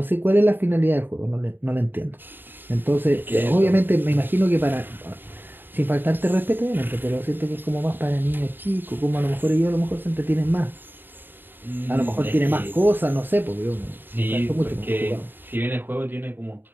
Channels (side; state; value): left; late; 0.094 ms